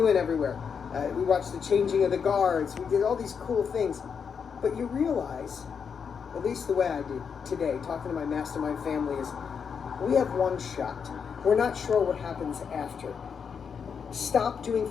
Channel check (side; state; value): right; quieter; 6.5 dB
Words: went everywhere. We watched the changing of the guards. We did all these cool things. But you realize, at least the way I did today, talking to my mastermind family, is we have one shot. We're not sure what happens after. Stop doing